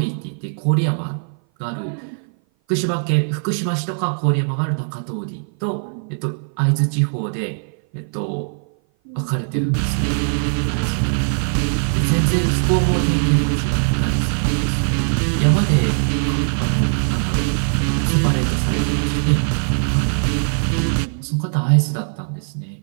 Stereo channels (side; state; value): left; silent; 57 dB below the other